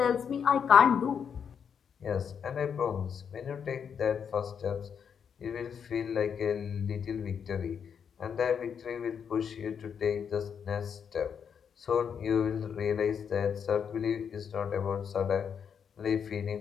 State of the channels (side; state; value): right; quieter; 7.3 dB